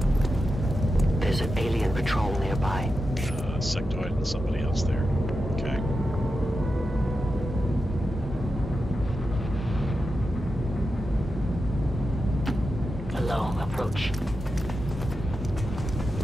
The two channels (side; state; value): both; normal; correlation 0.89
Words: There's an alien patrol nearby. Sectoid and somebody else there. Okay. Alone approach.